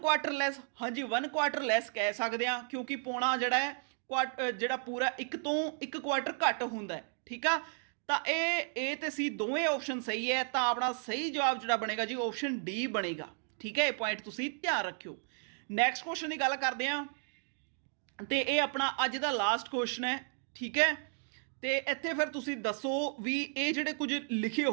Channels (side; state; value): left; silent; 55 dB below the other